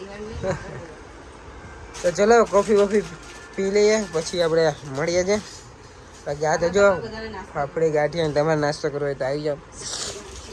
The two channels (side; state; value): both; identical; correlation 1.00